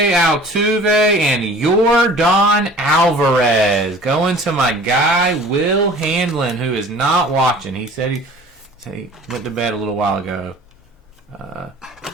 Altuve and Yordan Alvarez. Going to my guy Will Handlin, who is not watching. He said he went to bed a little while ago.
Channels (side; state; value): both; normal; correlation 0.46